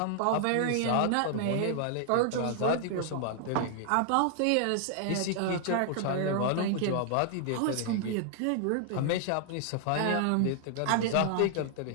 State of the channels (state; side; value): different; both; correlation 0.00